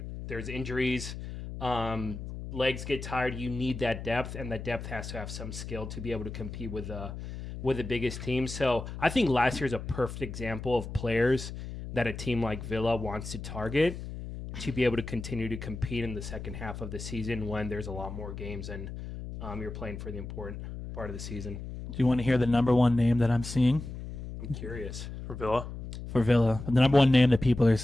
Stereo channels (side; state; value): left; noise; hum, 9 dB below the sound